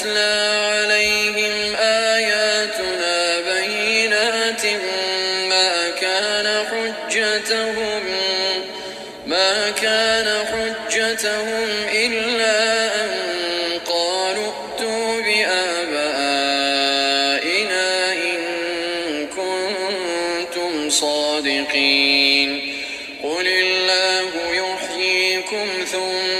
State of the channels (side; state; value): both; identical; correlation 1.00